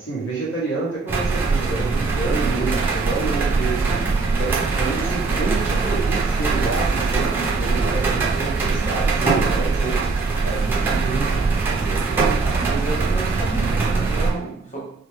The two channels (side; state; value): left; quieter; 3.7 dB